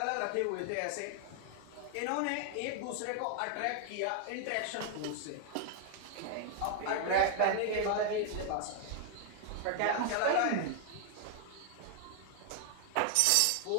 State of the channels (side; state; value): both; different; correlation 0.00